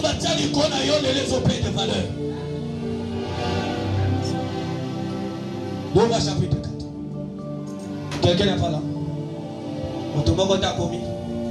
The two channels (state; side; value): identical; both; correlation 1.00